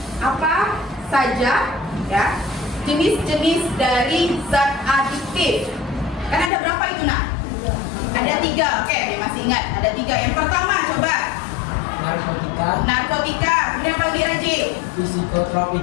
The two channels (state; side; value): drops out; right; at 6.5 s